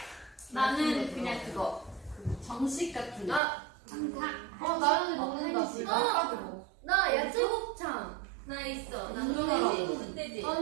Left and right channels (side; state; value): left; drops out; at 3.4 s